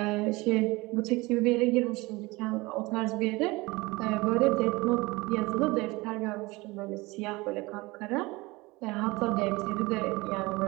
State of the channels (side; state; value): left; quieter; 22.7 dB